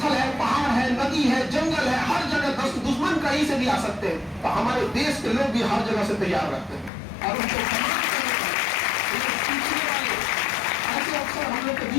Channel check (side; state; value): right; drops out; at 6.9 s